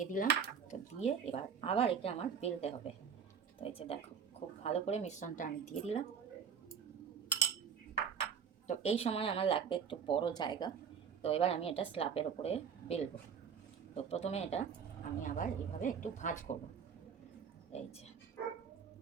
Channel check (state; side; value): quieter; left; 7.0 dB